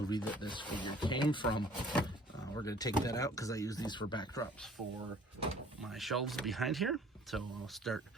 that this figure came from. We're going to take that out because I use these for backdrops for my shelves behind here. So I'll start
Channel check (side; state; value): both; normal; correlation 0.54